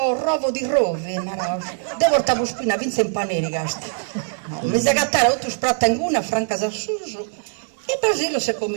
rovo di rovi, devo portare spina, vinse in paneri, gasta. No, mi si gattare otto spratta in una, franca da suso, e Basilio si è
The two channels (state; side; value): silent; left; digital silence